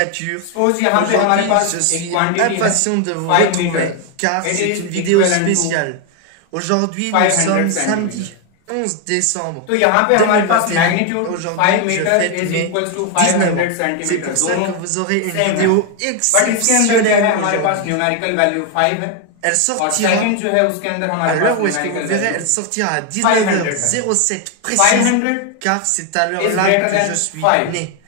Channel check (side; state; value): both; different; correlation 0.01